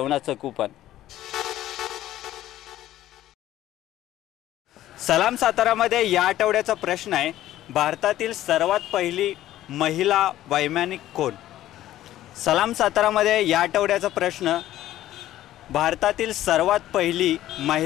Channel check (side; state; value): right; quieter; 13.8 dB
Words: कूपन। सलाम सातारामध्ये या आठवड्याचा प्रश्न आहे, भारतातील सर्वात पहिली महिला वैमानिक कोण? सलाम सातारामध्ये या आठवड्याचा प्रश्न, भारतातील सर्वात पहिली